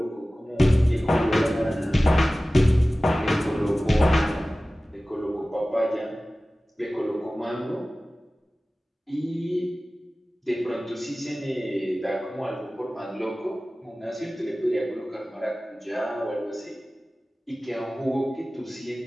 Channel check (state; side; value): normal; both; correlation 0.97